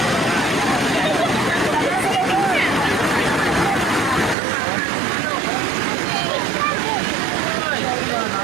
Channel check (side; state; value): left; drops out; at 4.4 s